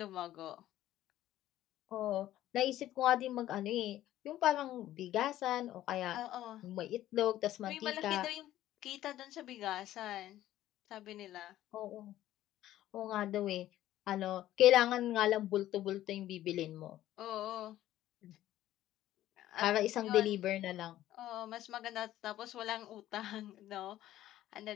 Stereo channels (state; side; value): quieter; right; 13.7 dB